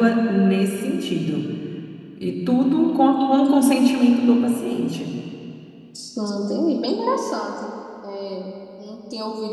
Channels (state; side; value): identical; both; correlation 1.00